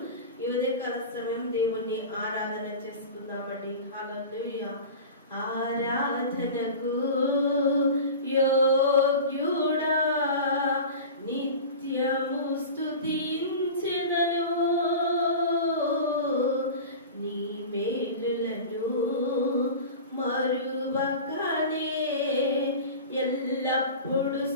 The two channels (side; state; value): both; inverted; correlation -0.33